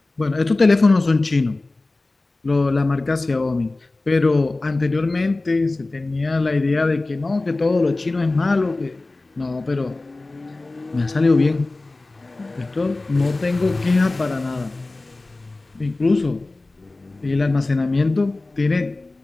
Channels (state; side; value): quieter; right; 3.1 dB